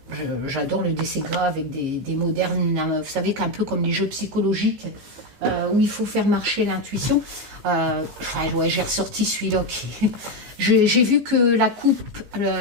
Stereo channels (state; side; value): late; left; 15 ms